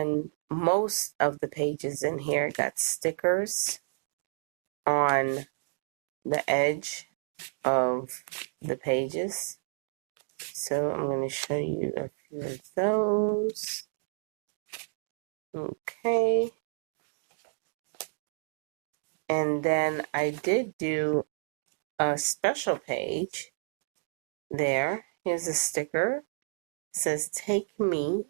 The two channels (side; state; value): left; silent; digital silence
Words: most of the pages in here got stickers on the edge of the pages. So I'm going to show you a few of those. Okay. And then I did do a special page there. Here's a sticker. It says take me,